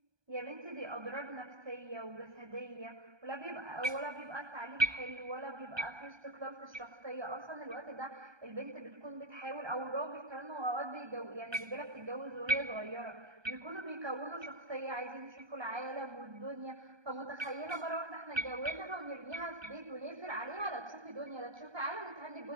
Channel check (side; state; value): left; late; 1.2 ms